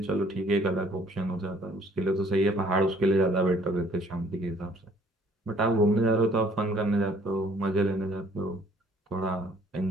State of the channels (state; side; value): normal; both; correlation 0.59